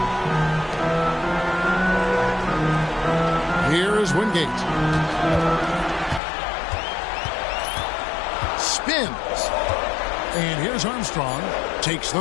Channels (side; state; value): right; drops out; at 6.2 s